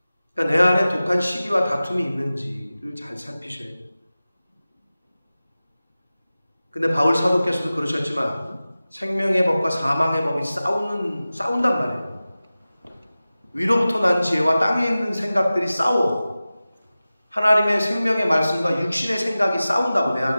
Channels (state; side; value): inverted; both; correlation -0.96